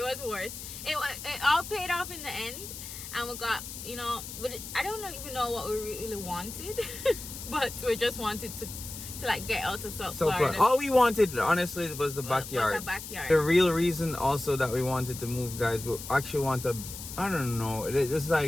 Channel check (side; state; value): left; noise; hiss, 10 dB below the sound